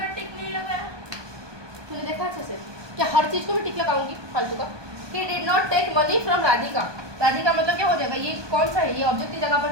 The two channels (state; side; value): late; left; 1.2 ms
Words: टिक नहीं लगाया। तूने देखा अच्छे से, क्या हर चीज को मैं टिक लगाऊंगी फालतू का? He did not take money from Radhika, Radhika मतलब क्या हो जाएगा, ये कौन सा है, ये ऑब्जेक्ट की जगह पर